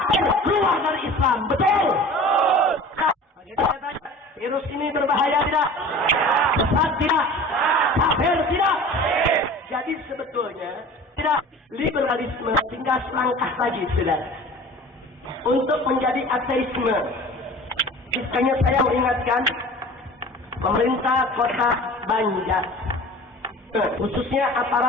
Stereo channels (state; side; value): normal; both; correlation 0.40